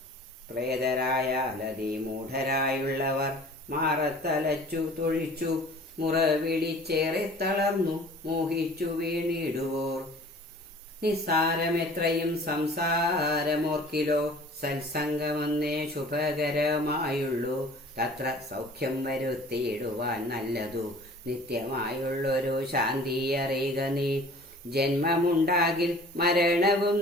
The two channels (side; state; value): both; normal; correlation 0.47